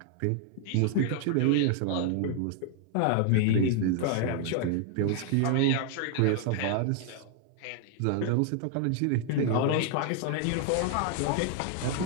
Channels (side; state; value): both; different; correlation 0.00